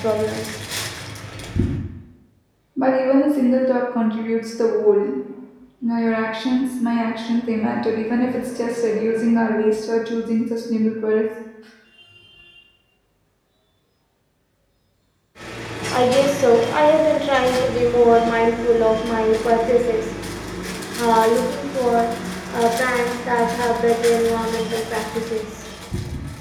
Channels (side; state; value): both; identical; correlation 1.00